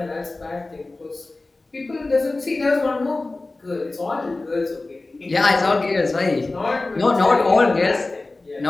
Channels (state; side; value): quieter; right; 3.2 dB